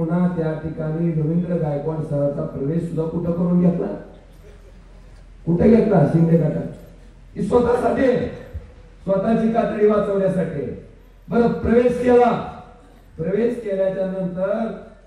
त्या ठिकाणी रवींद्र गायकवाड सरांचा प्रवेश सुद्धा कुठं करून घेतला, कुठे घेतला? शिंदे गटात. ही स्वतःसाठी, स्वतःची कातडी वाचवण्यासाठी. बरं, प्रवेश केला. प्रवेश केल्याच्या नंतर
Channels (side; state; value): both; identical; correlation 1.00